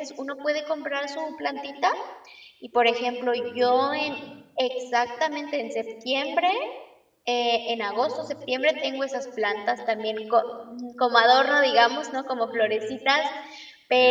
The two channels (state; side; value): identical; both; correlation 1.00